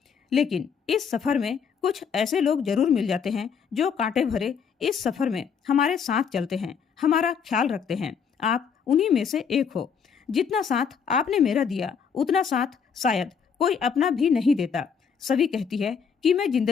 लेकिन इस सफर में कुछ ऐसे लोग जरूर मिल जाते हैं जो कांटे भरे इस सफर में हमारे साथ चलते हैं, हमारा ख्याल रखते हैं। आप उन्हीं में से एक हो। जितना साथ आपने मेरा दिया उतना साथ शायद कोई अपना भी नहीं देता। सभी कहती है कि मैं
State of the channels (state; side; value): quieter; right; 6.7 dB